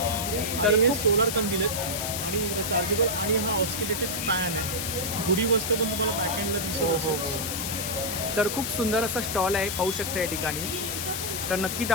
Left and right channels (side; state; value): left; noise; hiss, 3 dB below the sound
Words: तर हे सोलर कंदील आहेत आणि चार्जेबल. आणि हा ऑस्किलेटेड फॅन आहे. गुढी वस्तू पण तुम्हाला बॅकएंडला दिसत असेल. तर खूप सुंदर असा स्टॉल आहे, पाहू शकता या ठिकाणी. तर नक्की